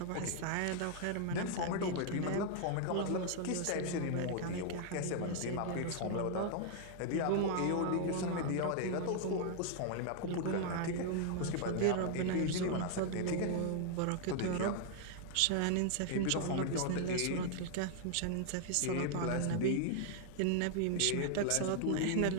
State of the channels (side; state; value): both; different; correlation 0.00